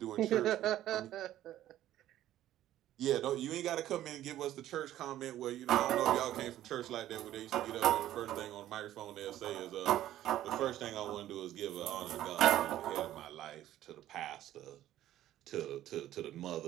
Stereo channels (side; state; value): left; quieter; 13.1 dB